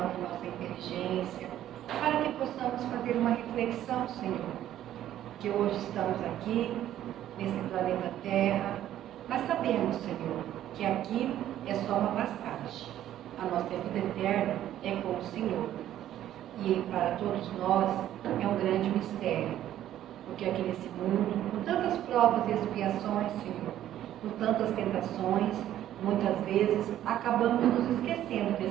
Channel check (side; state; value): left; quieter; 12.1 dB